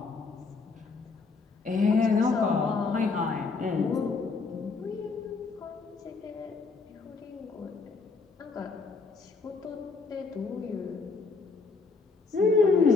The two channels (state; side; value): quieter; right; 4.3 dB